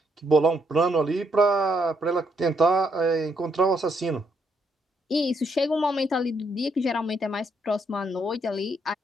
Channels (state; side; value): normal; both; correlation 0.74